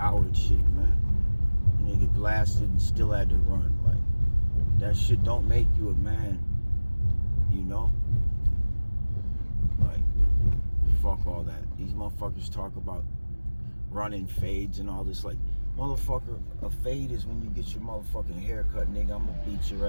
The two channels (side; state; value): both; inverted; correlation -1.00